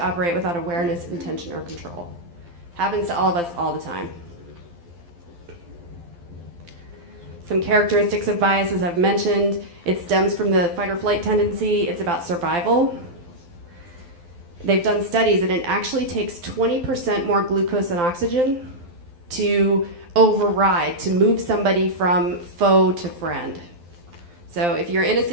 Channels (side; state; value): left; late; 12 ms